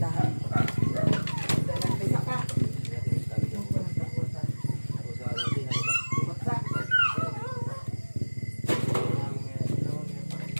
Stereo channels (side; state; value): both; inverted; correlation -1.00